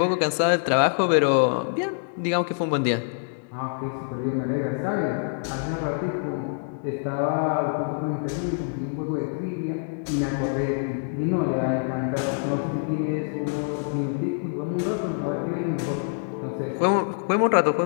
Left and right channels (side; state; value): right; silent; digital silence